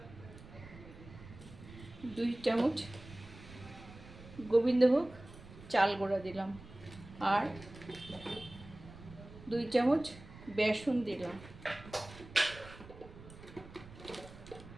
2 চামচ গোবিন্দভোগ চাল গুঁড়া দিলাম আর 2 চামচ বেসন দিলাম।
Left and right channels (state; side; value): noise; right; rumble, 17 dB below the sound